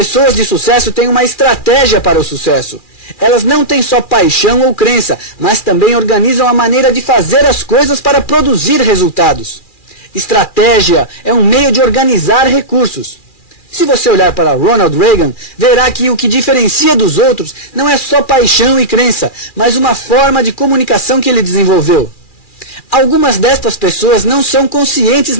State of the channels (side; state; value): right; late; 2.4 ms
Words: de sucesso têm uma estratégia para o sucesso. Elas não têm só paixão ou crença, mas também organizam a maneira de fazer as coisas para produzir resultados. Estratégia é um meio de organizar recursos. Se você olhar para Ronald Reagan, verá que o que diferencia dos outros não é só paixão e crença, mas uma forma de comunicação que ele desenvolveu. Algumas destas pessoas não são conscientes